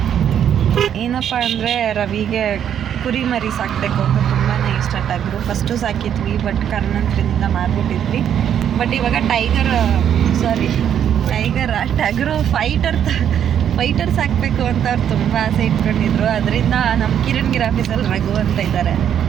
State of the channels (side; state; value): left; quieter; 9.3 dB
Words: ಏನಪ್ಪ ಅಂದರೆ ರವಿಗೆ ಕುರಿ ಮರಿ ಸಾಕಬೇಕು ಅಂತ ತುಂಬಾ ಇಷ್ಟ. ಟಗರು ಫಸ್ಟು ಸಾಕಿದ್ವಿ, ಬಟ್ ಕಾರಣಾಂತರದಿಂದ ಮಾರ್ಬಿಟ್ಟಿದ್ವಿ. ಬಟ್ ಇವಾಗ ಟಗರು ಫೈಟರ್ ಸಾಕಬೇಕು ಅಂತ ಅವ್ರು ತುಂಬ ಆಸೆ ಇಟ್ಕೊಂಡಿದ್ರು. ಅದರಿಂದ ನಮ್ಮ ಕಿರಣ್ ಆಫೀಸಲ್ಲಿ ರಘು ಅಂತ ಇದ್ದಾರೆ,